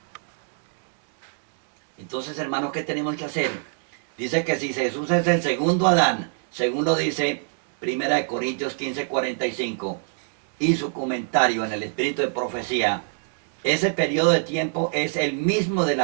Entonces, hermanos, ¿qué tenemos que hacer? Dice que si Jesús es el segundo Adán, según lo dice 1 Corintios 15:45, y su comentario en el espíritu de profecía, ese periodo de tiempo es el mismo de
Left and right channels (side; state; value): left; silent; digital silence